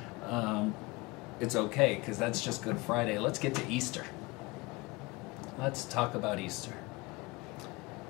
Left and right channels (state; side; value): quieter; right; 23.8 dB